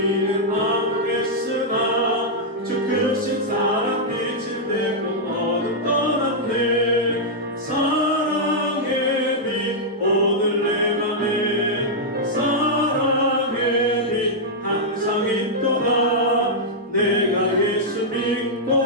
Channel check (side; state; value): both; normal; correlation -0.07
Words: 아무랬으나 주 크신 사랑 빛을 내고 어둠 떠났네. 사랑의 빛 오늘 내 맘에 사랑의 빛 항상 있도다. 내가 예수